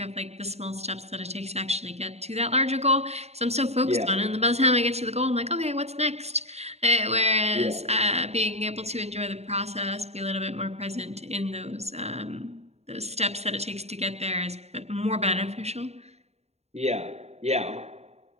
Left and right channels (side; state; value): left; late; 0.31 ms